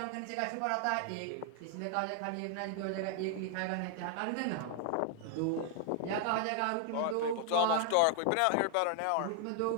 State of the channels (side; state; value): both; different; correlation 0.00